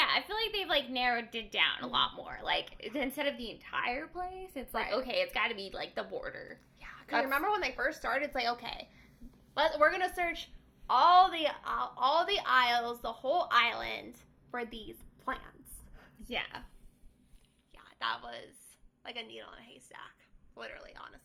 I feel like they've like narrowed it down a lot more. Like instead of the entire place, it's like, okay, it's got to be like the border. Yeah, because remember when they first started, it's like, okay, we're going to search all the isles, the whole island for these plants. Yeah. Yeah, that was like a needle in a haystack. Literally,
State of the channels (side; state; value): both; identical; correlation 1.00